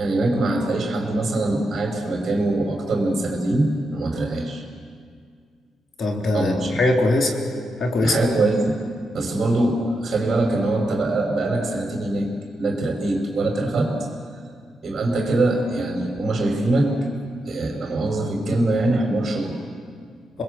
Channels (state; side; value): normal; both; correlation 0.86